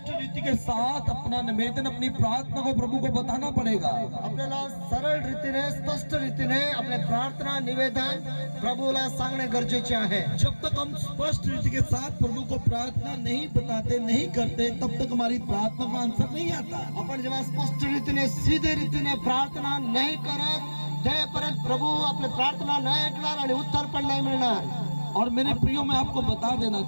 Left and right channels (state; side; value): inverted; both; correlation -1.00